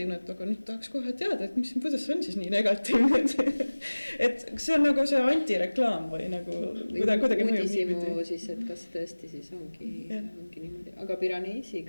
et aga nüüd tahaks kohe teada, et kuidas see on siis nii negatiivne, et see on nagu see antireklaam või nagu kuidagi mõjub niipidi. Siis, et kas tõesti siis ongi niimoodi, aga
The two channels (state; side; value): inverted; both; correlation -1.00